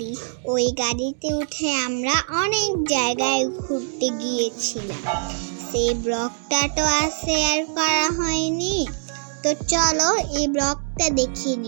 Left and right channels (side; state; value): left; silent; digital silence